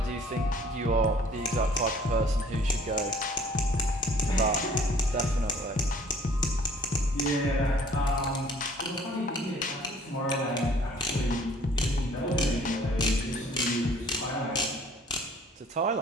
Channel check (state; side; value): normal; both; correlation 0.54